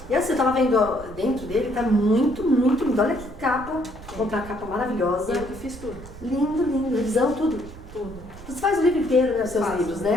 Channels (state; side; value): noise; right; rumble, 15 dB below the sound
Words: E assim, eu tava vendo dentro dele, tá muito, muito lindo. Olha que capa. Comprar uma capa maravilhosa. Eu que fiz tudo. Lindo, lindo. Revisão, tudo. Tudo. Você faz o livro inteiro, né? Os seus livros,